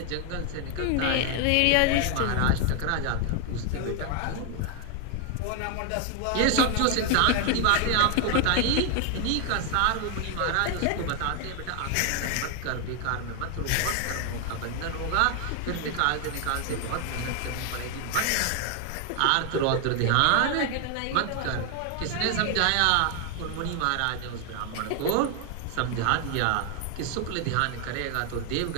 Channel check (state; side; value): different; both; correlation 0.01